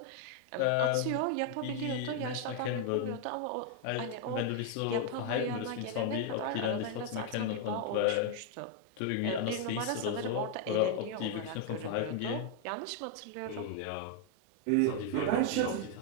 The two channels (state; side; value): different; both; correlation 0.00